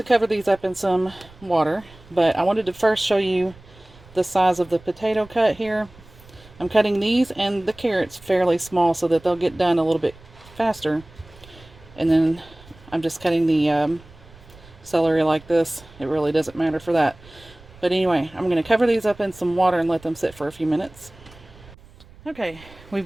cover these up in some water, but I wanted to first show you the size of the potato cut here. I'm cutting these and the carrots fairly small so that they'll get done a little bit faster. And then I'm just cutting the celery like this. It really doesn't matter for that. But anyway, I'm going to cover these up in some water and let them sit for a few minutes. Okay,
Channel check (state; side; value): noise; right; rumble, 23 dB below the sound